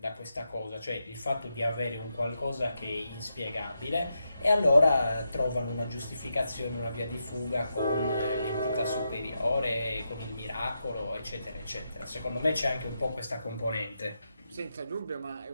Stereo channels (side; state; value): both; inverted; correlation -0.85